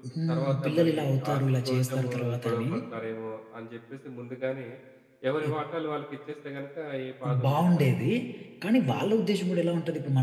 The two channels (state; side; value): identical; both; correlation 1.00